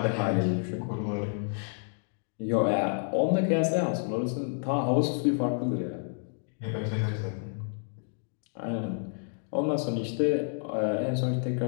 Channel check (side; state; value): right; silent; 58 dB below the other